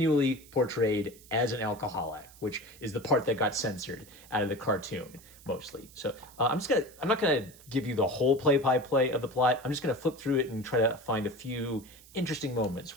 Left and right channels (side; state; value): right; noise; hiss, 22 dB below the sound